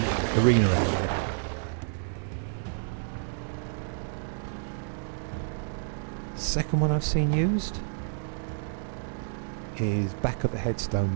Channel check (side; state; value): left; silent; digital silence